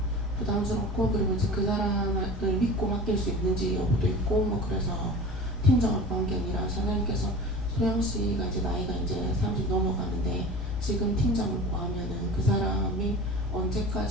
부담스럽고 그리고 이제 그 사람을 믿고 맡길 수 있는지 여부도 있고 뭐 그래서 팀장을 구한 게 아니라 사장님께서 소영씨가 이제 나이가 이제 30 넘어가는데 지금 팀장을 구하면은 그 사람이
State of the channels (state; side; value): normal; both; correlation 0.37